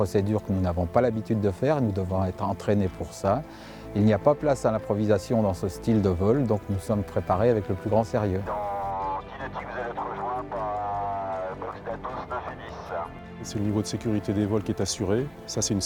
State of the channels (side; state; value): left; noise; hum, 29 dB below the sound